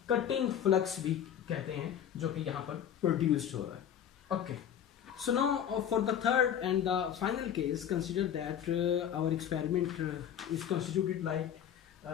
कटिंग फ्लक्स भी कहते हैं जो कि यहाँ पर प्रोड्यूस्ड हो रहा है। Okay, so now for the third and the final case consider that our experiment is constituted like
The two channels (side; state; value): right; quieter; 9.4 dB